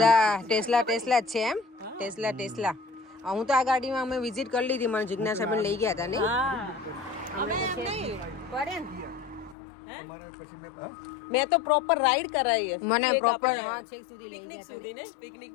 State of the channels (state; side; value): drops out; right; at 9.6 s